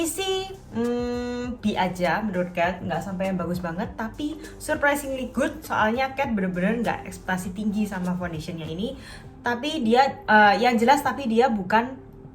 sih B aja menurut Kat, nggak sampai yang bagus banget, tapi surprisingly good. Soalnya Kat bener-bener nggak ekspektasi tinggi sama foundationnya ini. Tapi dia yang jelas, tapi dia bukan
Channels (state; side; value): identical; both; correlation 1.00